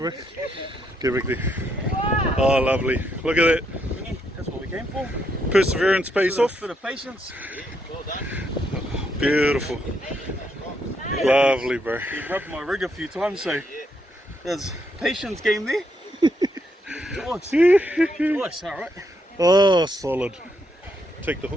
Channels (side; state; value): both; normal; correlation 0.77